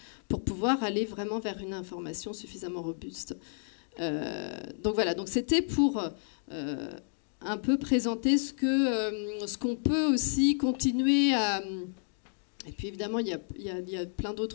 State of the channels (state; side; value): silent; right; digital silence